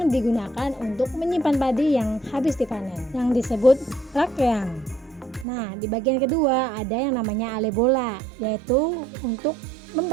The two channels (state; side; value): drops out; left; at 5.5 s